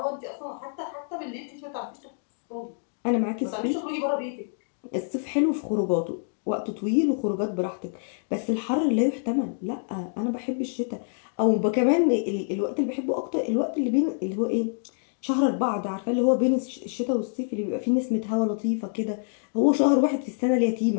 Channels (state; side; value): silent; right; digital silence